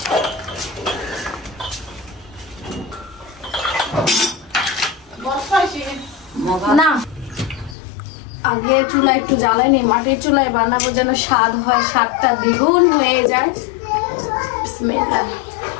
না আগে চুলা একটু জ্বালাই নি, মাটির চুলায় বানাবো যেন স্বাদ হয়, স্বাদটা দ্বিগুণ হয়ে যায়। বিসমিল্লাহ।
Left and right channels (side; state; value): right; drops out; at 7.8 s